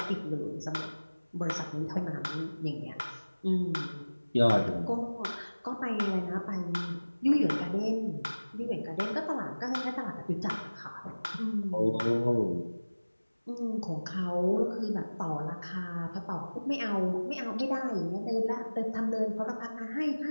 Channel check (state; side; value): inverted; both; correlation -1.00